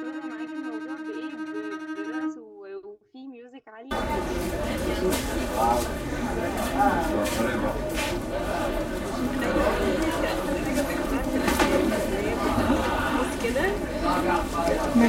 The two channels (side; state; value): both; identical; correlation 1.00